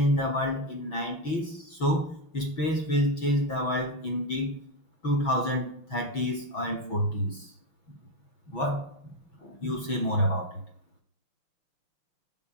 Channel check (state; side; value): late; right; 6.1 ms